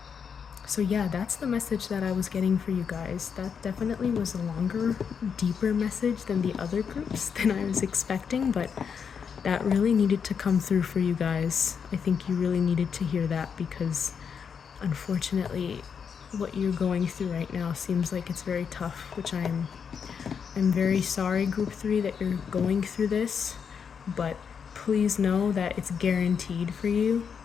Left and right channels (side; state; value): right; quieter; 6.8 dB